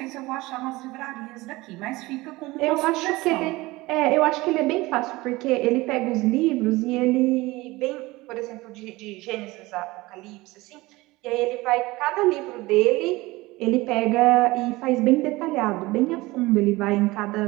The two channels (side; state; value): left; quieter; 20.7 dB